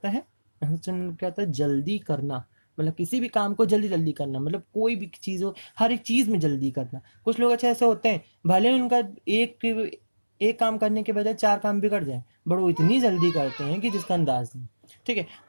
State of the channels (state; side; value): inverted; both; correlation -1.00